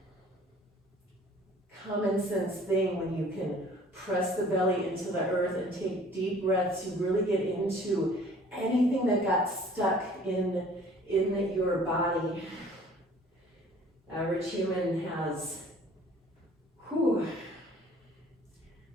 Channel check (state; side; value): normal; both; correlation 0.52